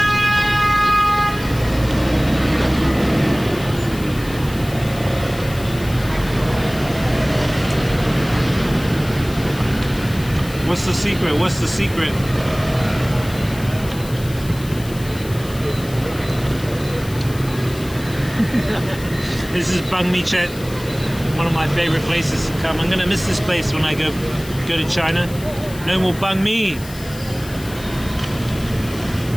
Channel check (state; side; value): noise; left; hiss, 16 dB below the sound